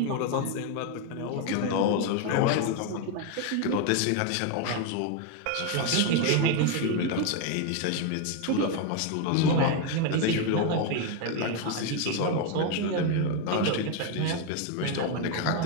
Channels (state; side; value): different; both; correlation 0.01